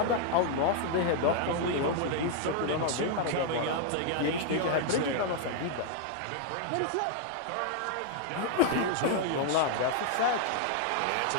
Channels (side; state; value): both; different; correlation 0.00